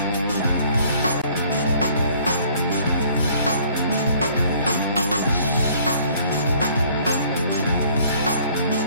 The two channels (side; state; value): both; inverted; correlation -0.57